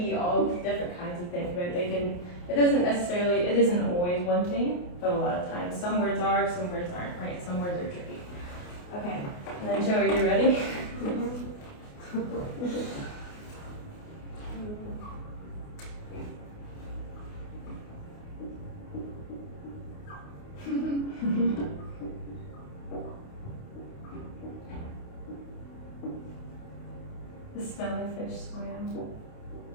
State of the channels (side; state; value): right; late; 28 ms